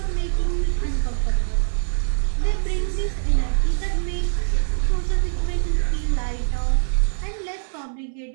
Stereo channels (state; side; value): silent; left; 63 dB below the other